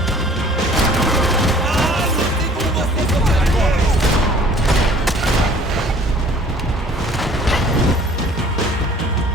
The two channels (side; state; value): both; normal; correlation 0.52